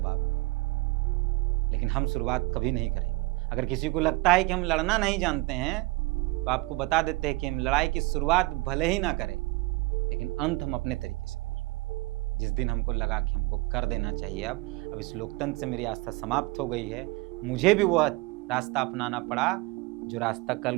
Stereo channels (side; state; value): left; quieter; 23.6 dB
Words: मिलेगा, लेकिन हम शुरुआत कभी नहीं करेंगे। अगर किसी को लगता है कि हम लड़ना नहीं जानते हैं, तो आपको बता देते हैं कि हम लड़ाई की शुरुआत भले ही ना करें, लेकिन अंत हम अपने तरीके से करेंगे। जिस दिन हमको लगा कि हमको कर देना चाहिए, अब इस लोकतंत्र से मेरी आस्था समाप्त हो गई है, मुझे भी वह रास्ता अपनाना पड़ा जो रास्ता कल